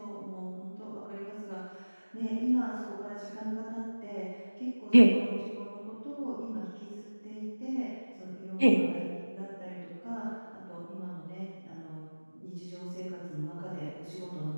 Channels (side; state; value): both; inverted; correlation -1.00